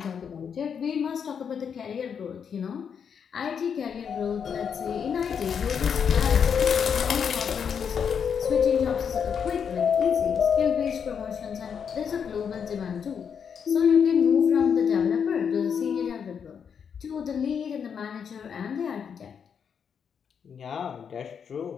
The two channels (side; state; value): right; quieter; 7.1 dB